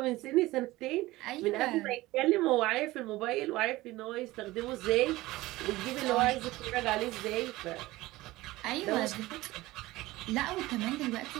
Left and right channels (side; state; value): left; quieter; 18.6 dB